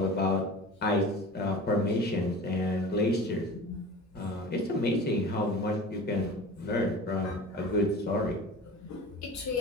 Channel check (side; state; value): both; normal; correlation 0.36